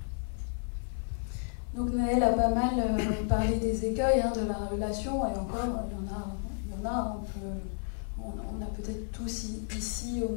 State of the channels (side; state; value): right; silent; digital silence